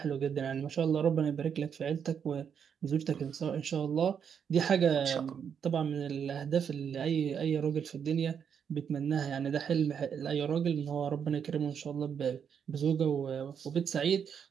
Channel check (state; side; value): quieter; left; 7.5 dB